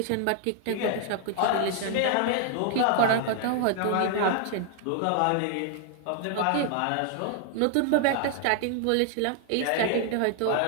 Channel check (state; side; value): different; both; correlation 0.00